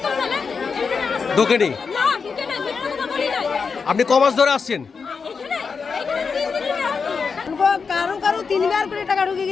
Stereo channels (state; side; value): quieter; right; 5.3 dB